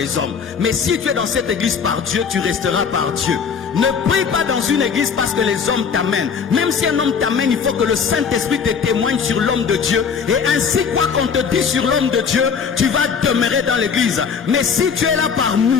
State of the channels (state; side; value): quieter; right; 6.4 dB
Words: hommes. Mais si tu es dans cette église par Dieu, tu resteras par Dieu. Ne prie pas dans une église parce que les hommes t'amènent. Même si un homme t'amène, il faut que le Saint-Esprit te témoigne sur l'homme de Dieu. Et ainsi, quoi qu'on te dise sur l'homme de Dieu, tu vas demeurer dans l'église. Mais si tu es là par